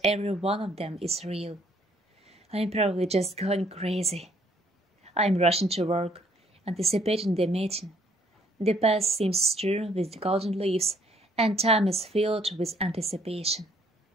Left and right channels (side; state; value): both; normal; correlation 0.65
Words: every one of them is real. I'm probably just going crazy. I'm rushing to work, anticipating the meeting. The path seems strewn with golden leaves, and time is filled with anticipation.